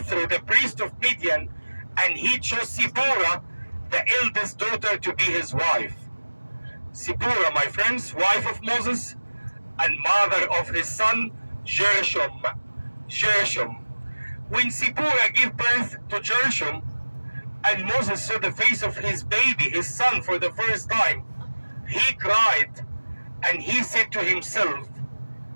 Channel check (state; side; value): inverted; both; correlation -1.00